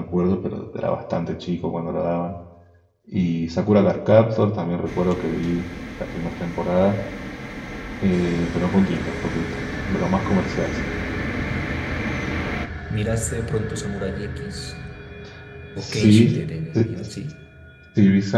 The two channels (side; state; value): both; identical; correlation 1.00